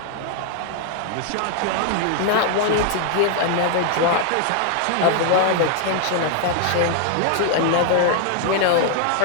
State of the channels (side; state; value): both; different; correlation 0.00